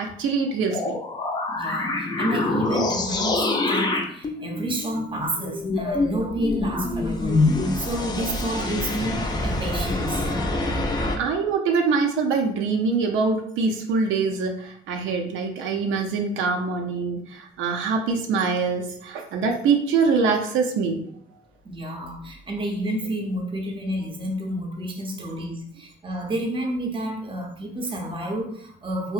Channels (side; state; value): both; normal; correlation 0.44